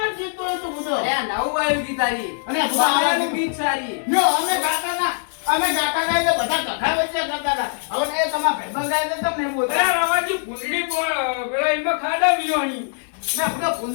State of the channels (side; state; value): right; silent; 60 dB below the other